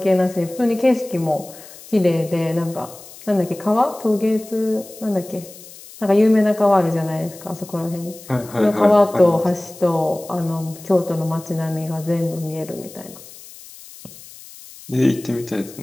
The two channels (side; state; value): left; noise; hiss, 18 dB below the sound